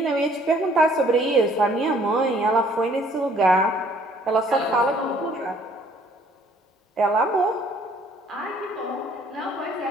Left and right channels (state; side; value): normal; both; correlation 0.60